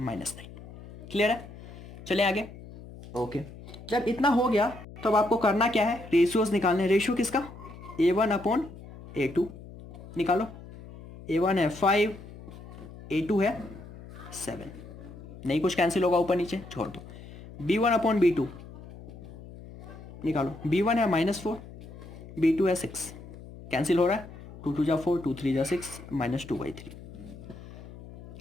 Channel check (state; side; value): noise; left; hum, 16 dB below the sound